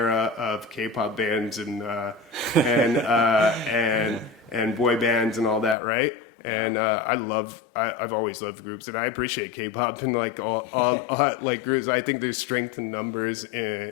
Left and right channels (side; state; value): right; drops out; at 5.8 s